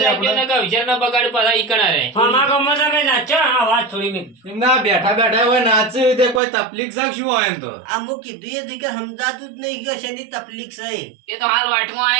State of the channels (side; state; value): left; drops out; at 6.4 s